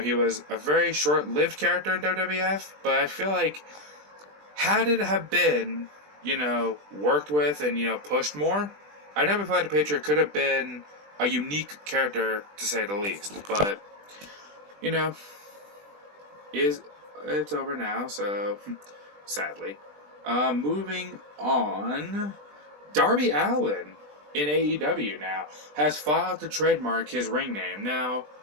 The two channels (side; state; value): left; late; 20 ms